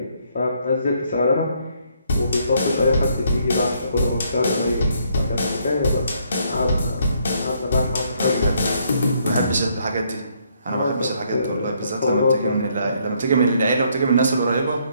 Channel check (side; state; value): both; inverted; correlation -0.70